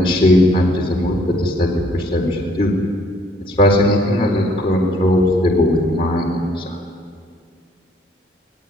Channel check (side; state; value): both; normal; correlation 0.63